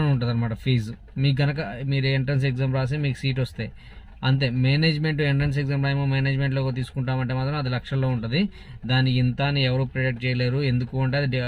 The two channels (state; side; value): identical; both; correlation 1.00